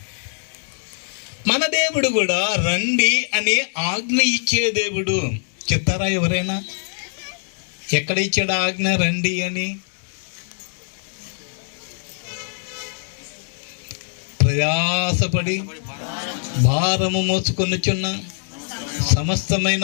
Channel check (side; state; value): right; silent; 61 dB below the other